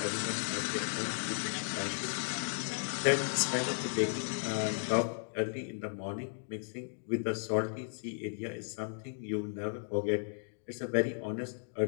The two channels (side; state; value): right; silent; digital silence